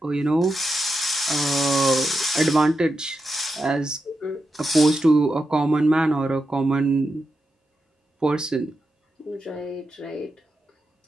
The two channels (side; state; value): both; normal; correlation 0.87